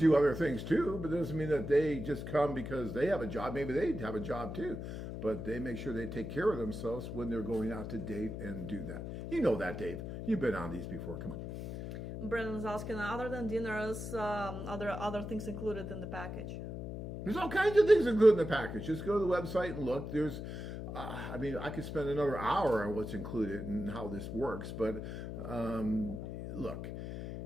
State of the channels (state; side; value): noise; left; hum, 7 dB below the sound